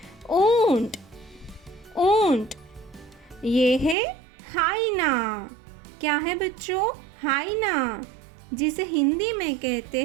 ऊंट. ऊंट. ये है हाइना. क्या है बच्चों? हाइना, जिसे हिंदी में कहते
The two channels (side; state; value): left; drops out; at 4.0 s